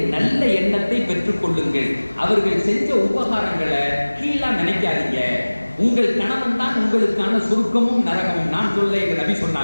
நல்ல எண்ணத்தை பெற்றுக் கொள்ளுங்கள். அவர்கள் செஞ்ச உபகாரங்களை கீழா நினைக்காதீங்க. உங்கள் கணவன் தான் உங்களுக்கான சொர்க்கமும் நரகமும். நான் சொல்ல எங்க நபி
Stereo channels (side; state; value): both; inverted; correlation -1.00